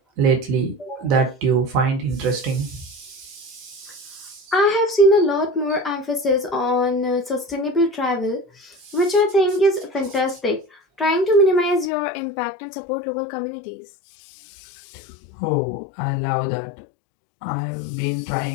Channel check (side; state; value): right; drops out; at 11.9 s